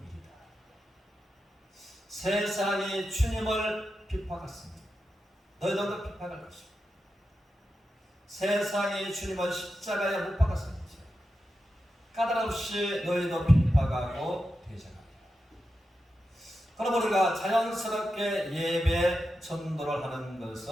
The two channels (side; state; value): both; normal; correlation 0.89